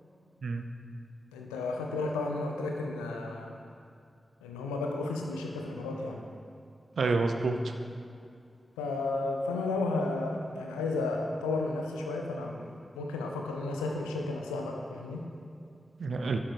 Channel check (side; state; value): both; normal; correlation 0.77